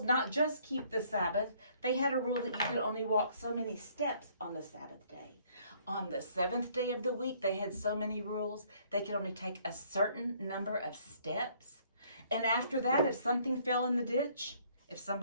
not just keep the Sabbath. They had a rule that you could only walk so many steps on the Sabbath day. On the 7th day of the week, they had so many rules. They could only take a certain number of steps. And after that, if something fell in the ditch, if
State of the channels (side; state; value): both; inverted; correlation -0.63